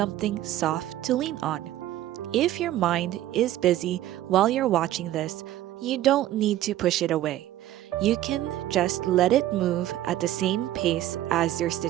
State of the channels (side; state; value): left; quieter; 13.7 dB